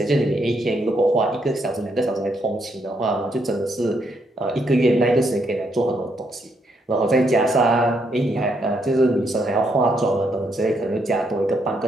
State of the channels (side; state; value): both; normal; correlation 0.76